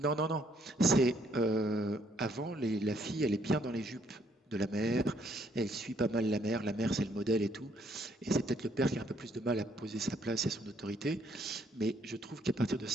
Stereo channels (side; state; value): both; normal; correlation 0.68